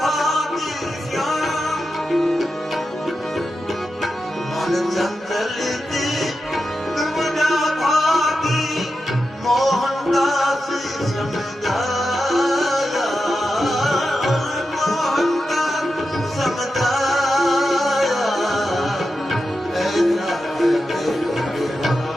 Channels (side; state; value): both; normal; correlation 0.90